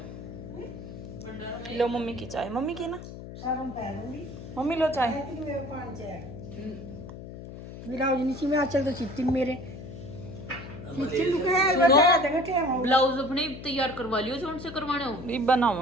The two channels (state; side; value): noise; left; hum, 12 dB below the sound